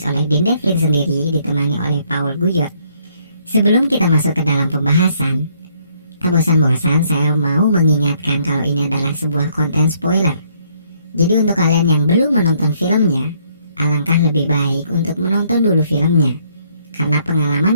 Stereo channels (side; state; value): both; inverted; correlation -0.68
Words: oleh Dean Devlin sendiri ditemani oleh Paul Guyot. Sebelum kita masuk ke dalam pembahasan, tak bosan-bosan saya mau mengingatkan kalau ini adalah sebuah konten spoiler. Jadi untuk kalian yang belum menonton filmnya, alangkah lebih baik untuk menonton dulu filmnya, karena pengalaman